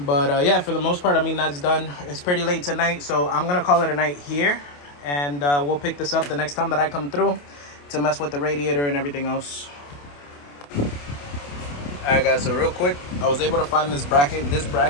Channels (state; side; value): late; right; 28 ms